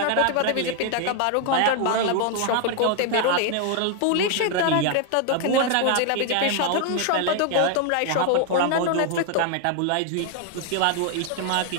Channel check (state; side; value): different; both; correlation 0.00